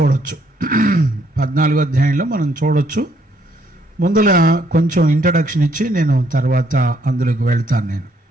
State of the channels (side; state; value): both; normal; correlation 0.69